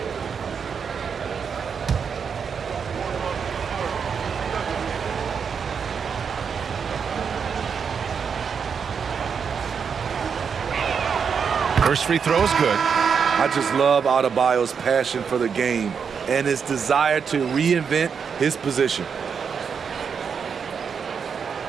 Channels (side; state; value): left; quieter; 6.5 dB